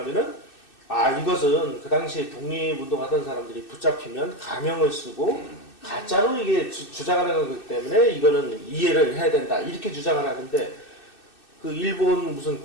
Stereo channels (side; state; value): right; late; 2.6 ms